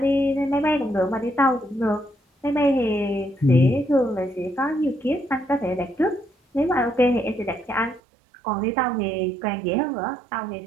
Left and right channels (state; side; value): drops out; left; at 8.0 s